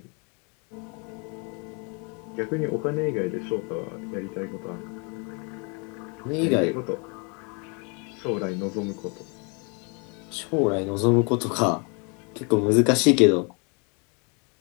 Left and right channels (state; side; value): quieter; right; 34.2 dB